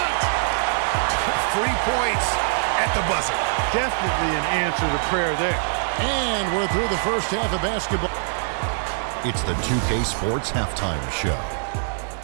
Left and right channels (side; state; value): left; silent; digital silence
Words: 3 points at the buzzer. Definitely an answer to prayer there. And we're through the first half of basketball. It's the 2K Sports Halftime Show.